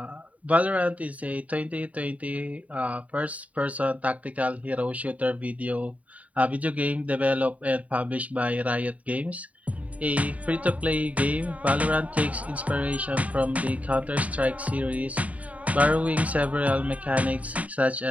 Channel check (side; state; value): left; late; 0.069 ms